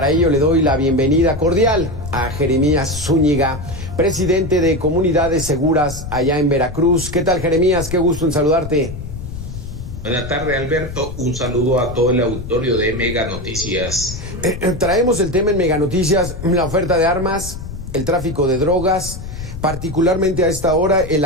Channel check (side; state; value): left; noise; rumble, 9 dB below the sound